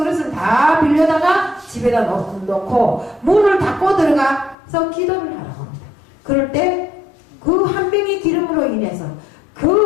다 빌려다가 집에다 놓고 문을 닫고 들어가서 기도를 하라고 합니다. 그럴 때 그 한 병의 기름으로 인해서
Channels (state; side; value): drops out; right; at 4.5 s